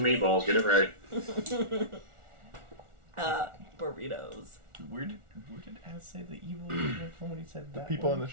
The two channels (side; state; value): left; late; 1.4 ms